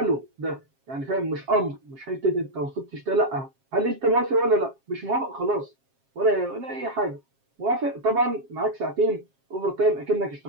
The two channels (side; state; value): left; late; 7.4 ms